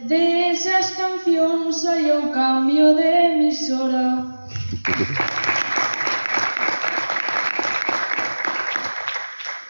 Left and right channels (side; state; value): both; inverted; correlation -1.00